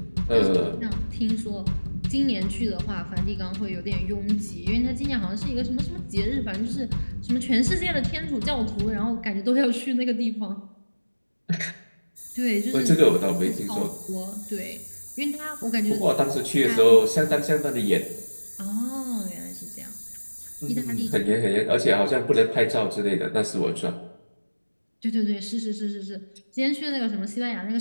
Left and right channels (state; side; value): inverted; both; correlation -1.00